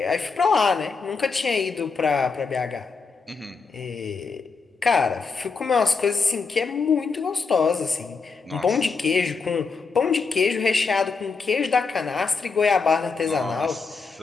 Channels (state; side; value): quieter; right; 4.7 dB